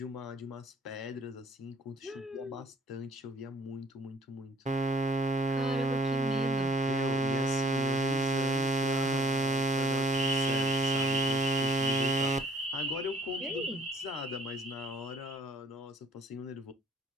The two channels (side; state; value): both; normal; correlation 0.57